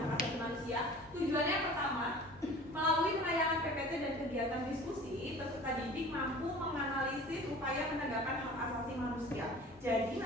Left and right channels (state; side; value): normal; both; correlation 0.43